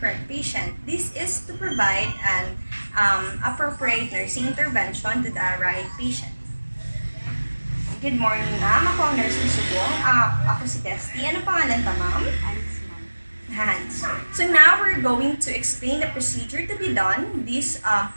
patient. This is to provide an appropriate nursing intervention to the right patient. Good morning, ma'am. Ako ang nurse ni Subong. Ako si Testy. Ano pangalan pa, ma'am? Hans. So now we're going to explain the procedure to be done. This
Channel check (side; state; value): both; inverted; correlation -1.00